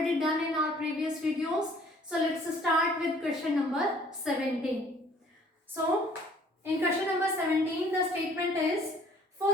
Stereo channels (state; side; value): normal; both; correlation 0.56